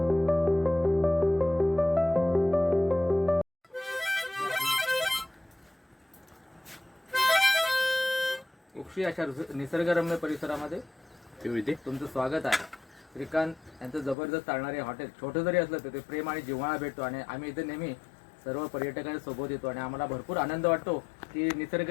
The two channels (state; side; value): drops out; right; at 14.2 s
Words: उक्षी अशा निसर्गरम्य परिसरामध्ये तुमचं स्वागत आहे. श्रीकांत यांचं जबरदस्त चालणारे हॉटेल छोटं जरी असलं तर ते प्रेम आणि जिव्हाळा भेटतो आणि आम्ही इथे नेहमी सर्व पर्यटकांच्या सोबत येतो आणि आम्हाला भरपूर आनंद वाटतो की